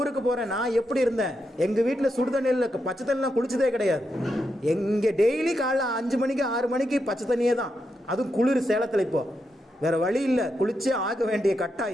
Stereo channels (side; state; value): both; normal; correlation 0.84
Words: போகிறேன். நான் எப்படி இருந்தேன்? எங்கள் வீட்டில் சுடுதண்ணியில் பச்சை தண்ணிலாம் குளிச்சதே கிடையாது. எங்கே டெய்லி காலைல 5 மணிக்கு 6 மணிக்கு பச்சை தண்ணியே தான். அதுவும் குளிர் சேலத்தில். இப்போது வேறு வழி இல்லை, குளிச்சே ஆக வேண்டிய